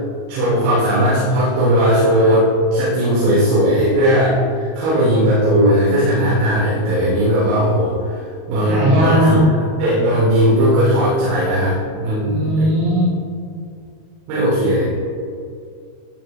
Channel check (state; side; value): late; left; 38 ms